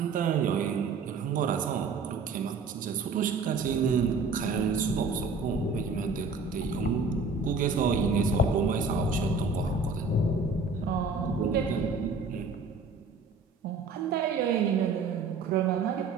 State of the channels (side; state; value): left; quieter; 4.3 dB